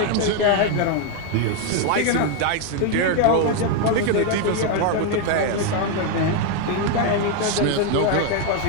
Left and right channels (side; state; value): both; different; correlation 0.01